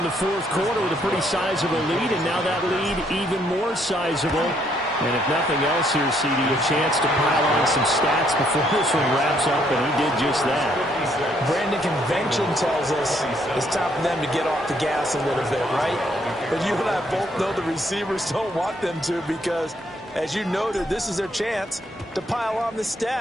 the fourth quarter with a pretty sizable lead, and now that lead even more sizable. And if nothing else here, CD, a chance to pile on some stats before this one wraps up, and he did just that. Brandon, convention tells us it's time for them to get off the gas a little bit, right? But you and I both know the receivers don't want them to because, as you noted, this is their chance to pile on the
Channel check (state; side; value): normal; both; correlation 0.70